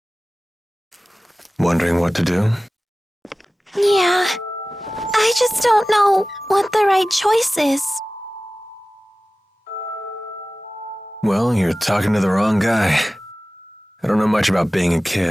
Wondering what to do? Yeah. I just don't know what the right choice is. Well, you're talking to the wrong guy. I don't know much about being a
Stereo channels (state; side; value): normal; both; correlation 0.96